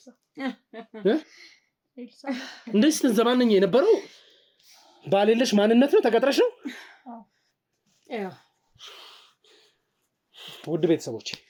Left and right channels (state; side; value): identical; both; correlation 1.00